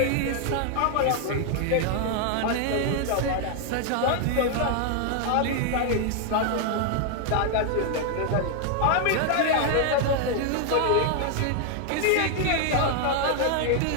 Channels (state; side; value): different; both; correlation 0.00